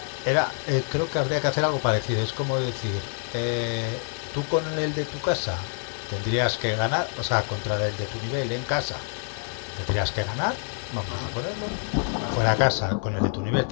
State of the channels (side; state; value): right; silent; 59 dB below the other